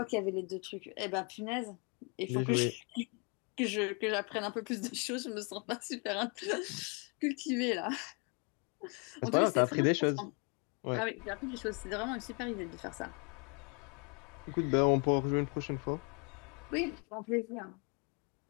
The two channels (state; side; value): quieter; right; 35.1 dB